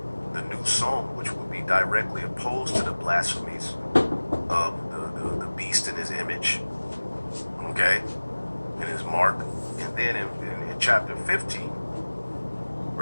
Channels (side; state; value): both; inverted; correlation -1.00